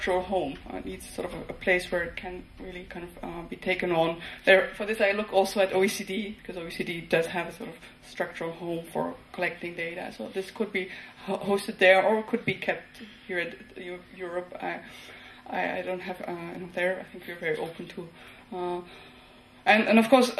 home. It needs sort of a place where it can really kind of be taken on. For this, I look also at OECD, because OECD does have a sort of structural home for collecting data. So this could be hosted there, or could be kept here at Europe. I don't have there. I think we're very open to. And of course,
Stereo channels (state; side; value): identical; both; correlation 1.00